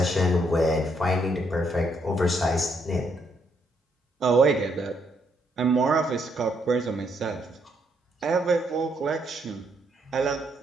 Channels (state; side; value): normal; both; correlation 0.74